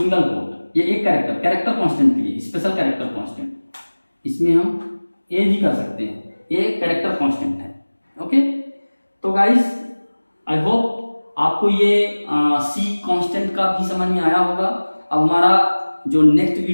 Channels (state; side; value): inverted; both; correlation -1.00